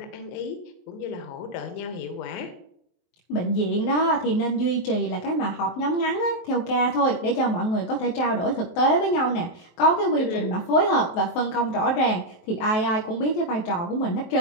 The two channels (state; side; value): late; right; 23 ms